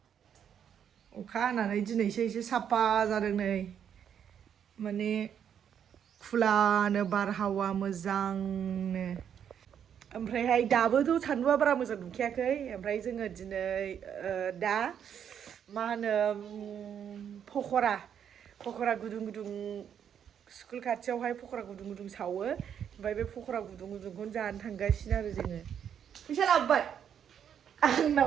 अखा हानानै दिनैसो एसे साफा जादों नै माने खुलानो बारहावा मोजांनो। ओमफ्रायहाय दाबोथ' सान्दुंआ बारा मोजां दुंखायाखै। ओमफ्राय जोङो दिनै दा मा होनो पकरा गुदुं स्कुल खाथियावहाय पकरा गुदुं सावो। ओमफ्राय बे पकरा गुदुंखौनो जानो थांगासिनो आरो जोङो। फैसा लाबोबाय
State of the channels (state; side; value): quieter; left; 8.6 dB